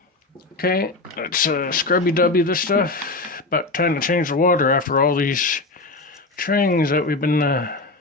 Okay, let's scrubby-dubby this stuff. About time to change the water after all these trains that we've been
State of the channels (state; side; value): quieter; right; 3.3 dB